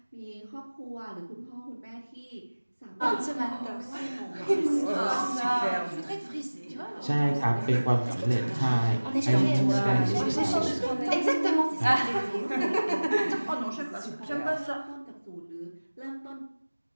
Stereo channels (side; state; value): both; inverted; correlation -1.00